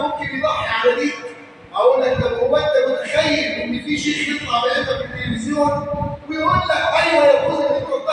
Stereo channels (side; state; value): both; identical; correlation 1.00